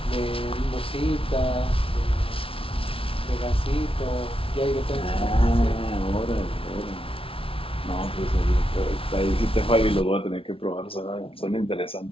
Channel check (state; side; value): late; right; 0.26 ms